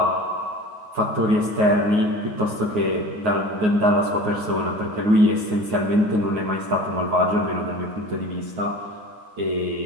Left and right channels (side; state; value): left; late; 9.5 ms